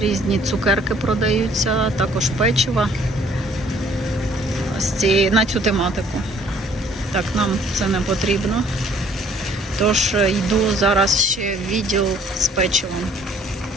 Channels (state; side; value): normal; both; correlation 0.59